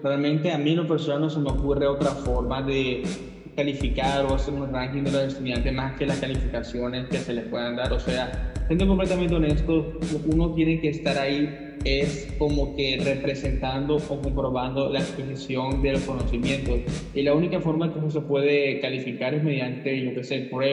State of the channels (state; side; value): identical; both; correlation 1.00